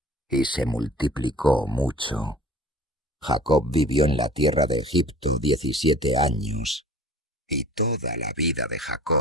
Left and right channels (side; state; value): both; normal; correlation 0.45